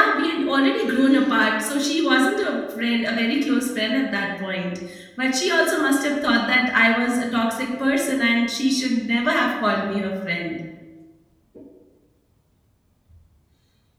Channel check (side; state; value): both; identical; correlation 1.00